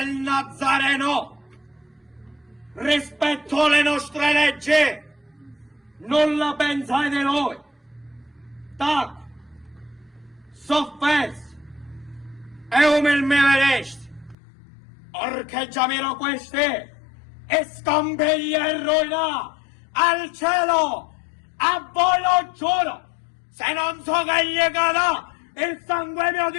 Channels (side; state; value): right; drops out; at 14.4 s